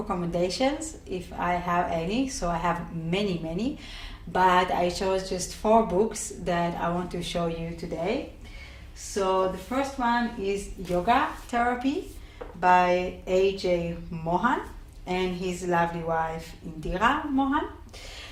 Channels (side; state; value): both; identical; correlation 1.00